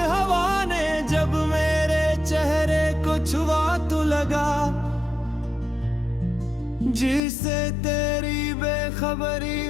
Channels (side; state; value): right; drops out; at 7.2 s